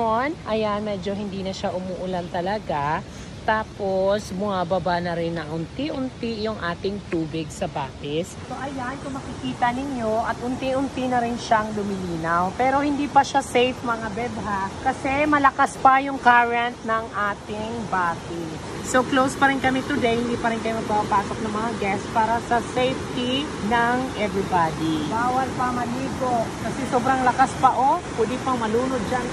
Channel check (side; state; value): both; identical; correlation 1.00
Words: ayan, medyo hindi na siya umuulan talaga. Tapos, bumababa na rin na unti-unti yung ating tubig sa batis. So, ayan, kung makikita ninyo, at unti-unti na rin siyang lumilinaw. Pero hindi pa siya safe, mga beb, ha? Kasi malakas pa yung current ng ating batis. So, close pa rin kami today. Hindi pa rin kayo magpapasok ng mga guests para sa safety ng everybody. Bawal pa maligo. Kasi sobrang lakas pa, oh. Pwede pang malunod dyan,